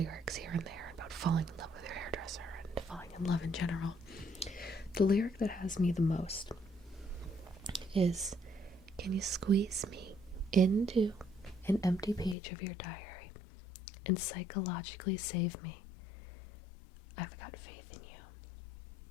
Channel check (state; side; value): drops out; right; at 12.4 s